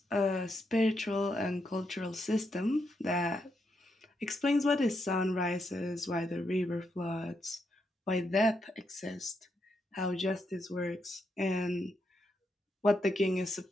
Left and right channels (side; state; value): both; normal; correlation 0.81